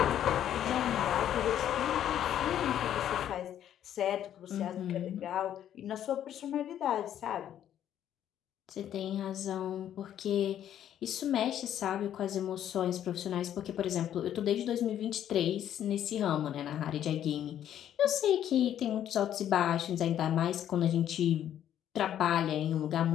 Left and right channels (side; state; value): right; quieter; 10.6 dB